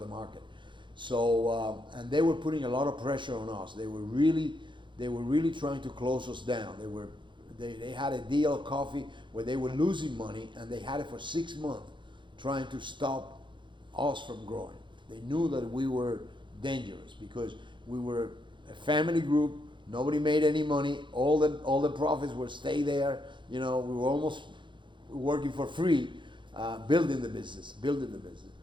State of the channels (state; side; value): late; left; 0.23 ms